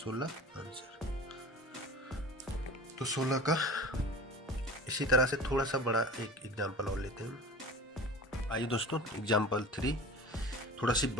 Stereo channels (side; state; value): both; normal; correlation 0.38